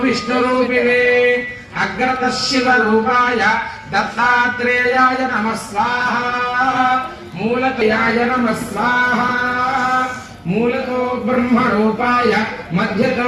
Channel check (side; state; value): both; identical; correlation 1.00